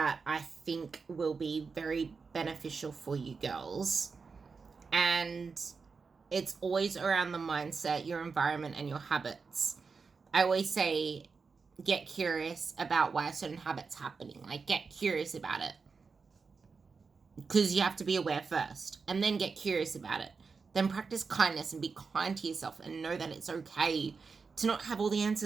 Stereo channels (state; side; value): quieter; left; 4.9 dB